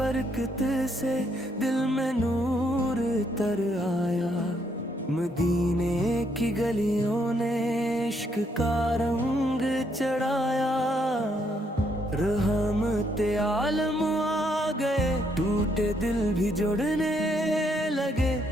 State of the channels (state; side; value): normal; both; correlation 0.73